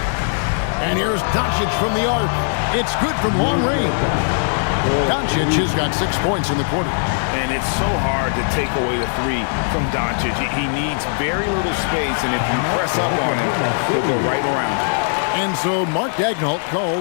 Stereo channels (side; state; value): right; silent; digital silence